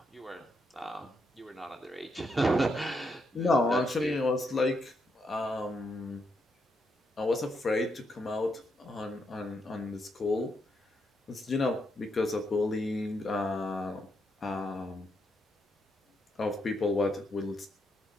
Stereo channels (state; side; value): normal; both; correlation 0.79